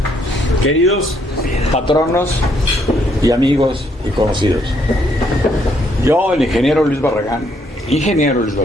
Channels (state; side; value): normal; both; correlation 0.71